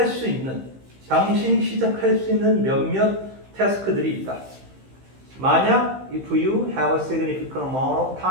수 있는, 당신이 시작할 수 있는 몇몇 태스크들이 있다. 만약 if you have a significant amount of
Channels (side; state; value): left; late; 15 ms